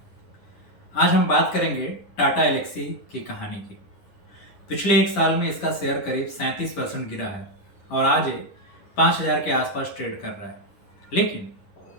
आज हम बात करेंगे टाटा एलेक्सी की कहानी की। पिछले एक साल में इसका शेयर करीब 37% गिरा है और आज ये 5,000 के आसपास ट्रेड कर रहा है। लेकिन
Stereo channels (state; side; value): late; right; 10 ms